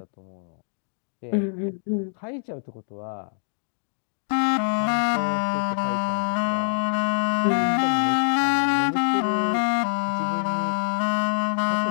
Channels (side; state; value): right; silent; 62 dB below the other